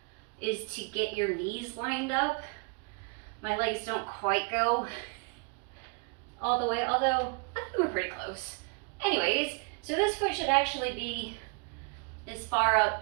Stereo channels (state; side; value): quieter; left; 36.9 dB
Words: is to get your knees lined up. My legs don't quite go all the way, although I think we're pretty close. Anyways, so this foot should actually be as far up